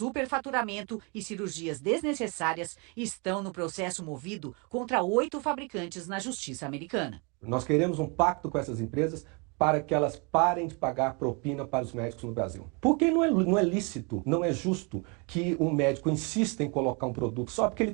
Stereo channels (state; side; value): quieter; left; 32.3 dB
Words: e cirurgias desnecessárias estão no processo movido contra 8 fabricantes na justiça americana. Nós queremos um pacto com essas empresas para que elas parem de pagar propina para os médicos no Brasil. Porque não é lícito, não é justo que um médico insista em colocar um produto só porque ele